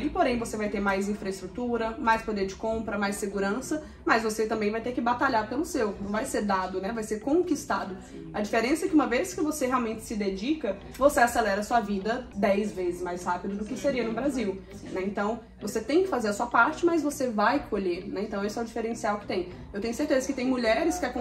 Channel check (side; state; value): both; identical; correlation 1.00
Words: porém você vai ter mais infraestrutura, mais poder de compra, mais segurança, mas você também vai ter que batalhar pelo seu, não vai ser dado, né, vai ser conquistado. A diferença é que uma vez que você realmente se dedica, você acelera a sua vida 10 vezes mais rápido do que seria no Brasil, né, então você tem que fazer a sua parte, mas você vai colher, né, então esse é o diferencial que tem. Eu tenho certeza que tem mulheres que